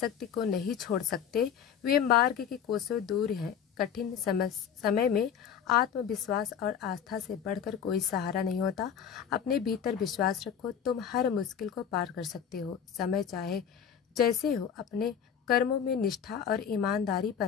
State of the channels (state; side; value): quieter; right; 8.1 dB